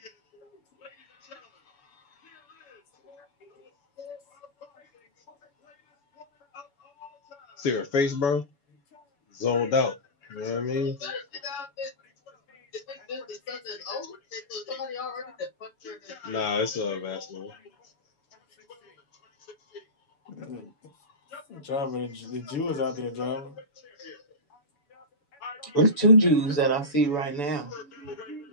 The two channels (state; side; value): late; right; 7.0 ms